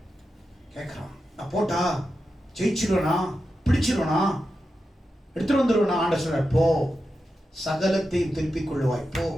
கேட்கிறான், நான் போட்டா ஜெயிச்சிருவனா, பிடிச்சிருவனா, எடுத்துட்டு வந்துருவனா? ஆண்ட சொல்ற, போ, சகலத்தையும் திருப்பிக் கொள்ளுவாய், போ.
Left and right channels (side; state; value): both; normal; correlation 0.89